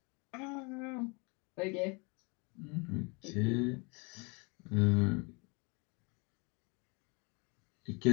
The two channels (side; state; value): right; quieter; 30.9 dB